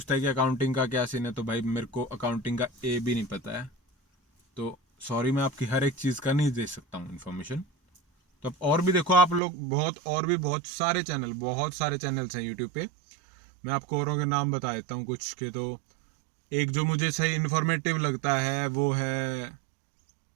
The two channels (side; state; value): left; drops out; at 9.4 s